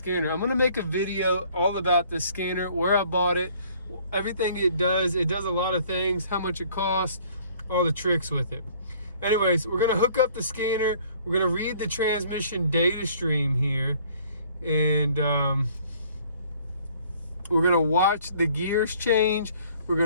I'm gonna make a video all about the scanner, where I bought it, everything it does. It does a lot of things, how much it costs, all the tricks with it. Anyways, we're gonna hook up the scanner. We're gonna read the transmission data stream here. And we're gonna watch the gears change. We're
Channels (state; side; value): inverted; both; correlation -0.57